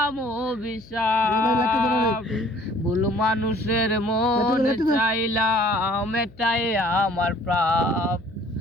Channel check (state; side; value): noise; left; hum, 23 dB below the sound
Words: অভিশাপ। ভুল মানুষের মন চাইলাম এটাই আমার প্রাপ,